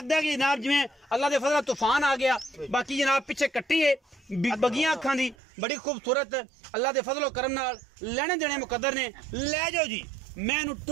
है कि जनाब जिवें अल्लाह दे फजल तूफान आ गया। बाकी जनाब पिछे कट्टी है बगियां अखां दी बड़ी खूबसूरत अल्लाह दे फजलो करम नाल लेने देने मुकद्दर ने। लै जाओ जी मैनू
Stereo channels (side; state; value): left; drops out; at 5.4 s